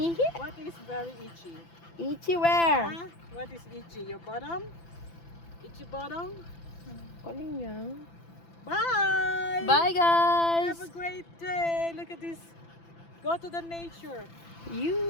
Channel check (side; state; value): right; late; 5.9 ms